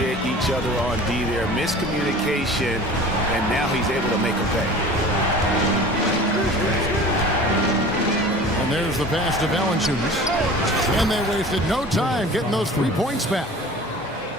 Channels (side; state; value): both; normal; correlation 0.41